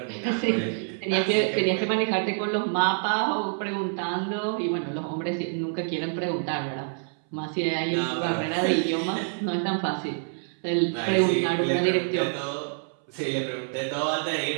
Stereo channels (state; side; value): silent; left; 60 dB below the other